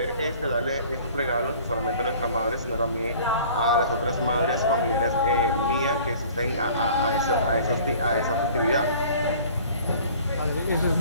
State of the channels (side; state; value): both; inverted; correlation -0.49